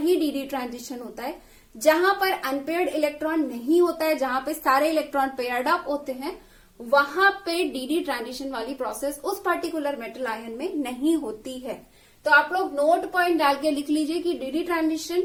डी ट्रांजिशन होता है। जहां पर अनपेयर्ड इलेक्ट्रॉन नहीं होता है, जहां पे सारे इलेक्ट्रॉन पेयर्ड अप होते हैं, वहां पे डी ट्रांजिशन वाली प्रोसेस उस पर्टिकुलर मेटल आयन में नहीं होती है। तो आप लोग नोट पॉइंट डाल के लिख लीजिए कि डी ट्रांजिशन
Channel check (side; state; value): both; identical; correlation 1.00